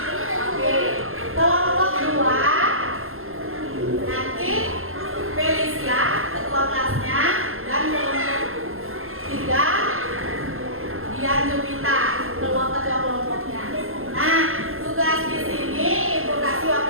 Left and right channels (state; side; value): late; left; 0.61 ms